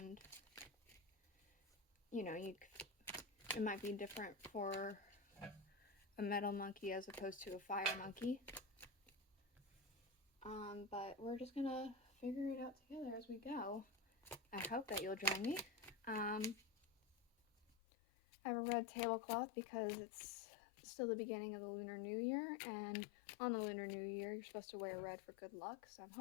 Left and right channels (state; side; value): drops out; right; at 17.8 s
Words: you know, it might be different for a metal monkey as opposed to a fire monkey. But we're just gonna figure it out together as we go. I hope that you'll join me. I have a red tablecloth because it's still the beginning of the Lunar New Year, and on the Lunar New Year, you're supposed to wear red for good luck, so I'm